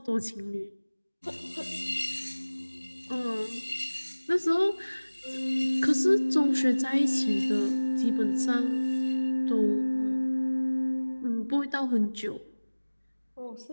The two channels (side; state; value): both; inverted; correlation -1.00